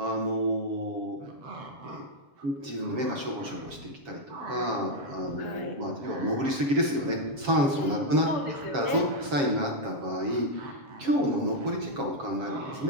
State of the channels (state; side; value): late; left; 7.3 ms